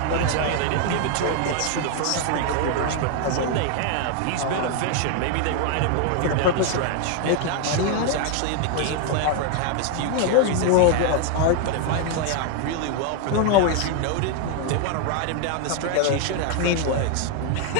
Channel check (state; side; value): different; both; correlation 0.00